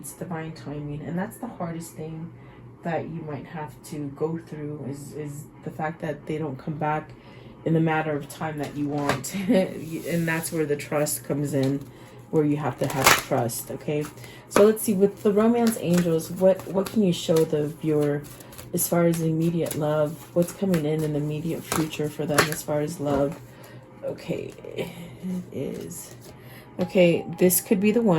divine timing. And that's the hardest thing that you might have to go through is the fact that they don't come back in the matter of time that you want. And that's where the trust comes in, where you have to have trust, okay? So let's see, with the romance angels, what can you show the viewer as far as immediate love? What's coming in the immediate future for them as far as love? Okay, it is. Okay, this could be the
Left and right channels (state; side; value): identical; both; correlation 1.00